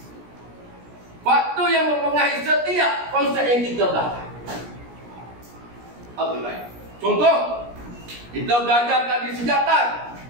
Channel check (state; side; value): late; left; 17 ms